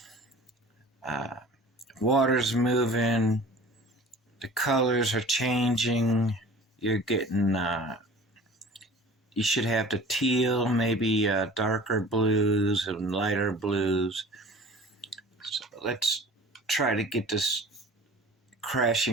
Water's moving, the colors are changing. You're getting, you should have the teal, maybe darker blues and lighter blues. So let's try to get this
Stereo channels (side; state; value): both; normal; correlation 0.43